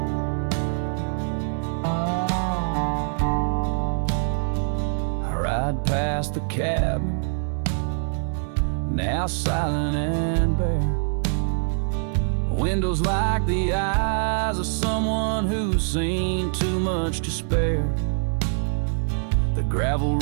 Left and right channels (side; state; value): left; silent; digital silence